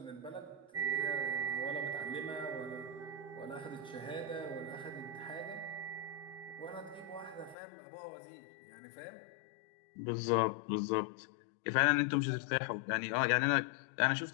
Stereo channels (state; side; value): drops out; right; at 7.6 s